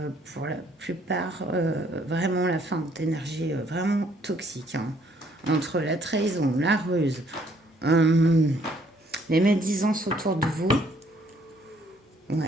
la plupart, vraiment la fin d'énergie vraiment toxique, hein. Entre la trahison, la ruse, les médisances autour de vous.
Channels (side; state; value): both; normal; correlation 0.65